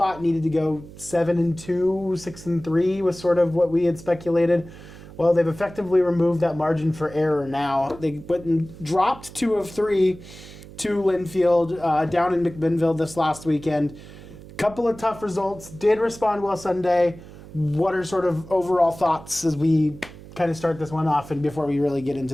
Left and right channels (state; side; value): noise; right; hum, 17 dB below the sound